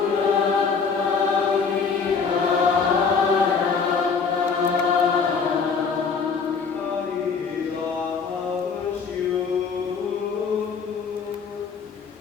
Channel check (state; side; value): quieter; right; 5.5 dB